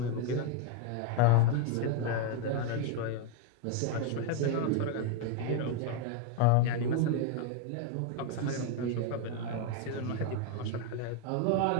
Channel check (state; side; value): different; both; correlation 0.01